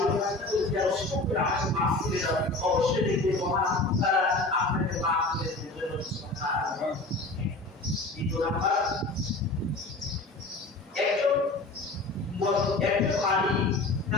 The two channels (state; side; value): quieter; right; 3.0 dB